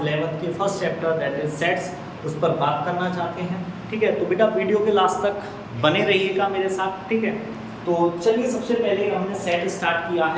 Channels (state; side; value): identical; both; correlation 1.00